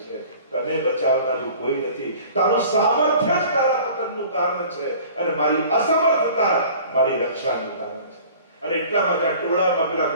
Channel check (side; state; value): both; inverted; correlation -0.46